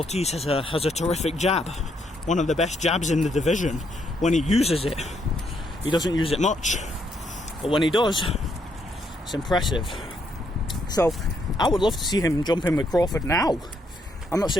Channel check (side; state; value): both; normal; correlation 0.74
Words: has a terrific jab, one of the best jabs in the division. When he uses it, he doesn't use it much, but when he does, it's impressive. So I would love to see him jump in with Crawford now. I'm not